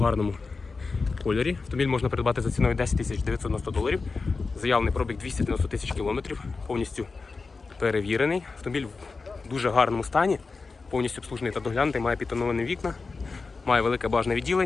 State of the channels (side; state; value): right; quieter; 4.2 dB